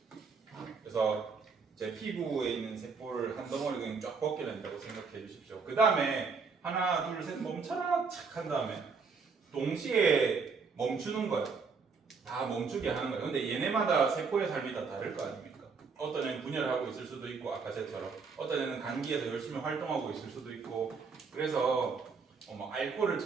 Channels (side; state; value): left; quieter; 5.1 dB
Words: 그래서 제 피부에 있는 세포를 한 덩어리 그냥 쫙 벗겨낸다고 생각해 주십시오. 그 다음에 하나 둘 셋 멈춰라 착 한 다음에 동시에 멈추는 거예요. 다 멈추게 하는 거예요. 근데 얘네마다 세포의 삶이 다 다를 거 아닙니까? 어떤 애는 분열하고 있을 수도 있고 아까 쟤처럼 어떤 애는 간기에서 열심히 활동하고 있을 수도 있고 그래서 뭐 알코올을